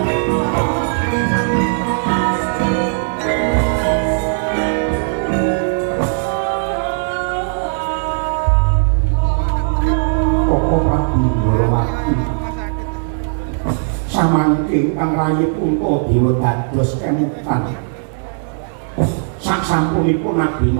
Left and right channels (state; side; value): silent; left; 67 dB below the other